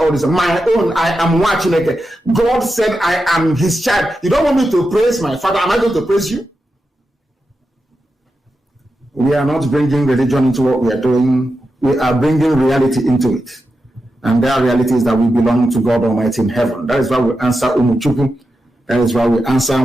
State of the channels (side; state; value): both; normal; correlation 0.89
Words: this. My own, I am watching it. God said I am his child. You don't want me to praise my father. Am I going to praise you? We are not bringing religion into what we are doing. We are bringing reality into it. And that reality is that we belong to God Almighty in heaven. That is why we answer Umuchuku. That is why we answer